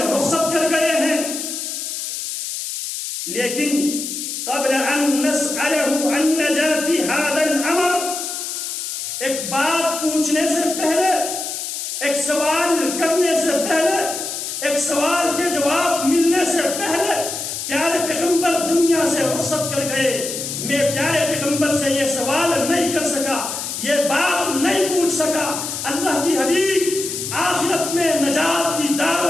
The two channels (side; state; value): left; noise; hiss, 5 dB below the sound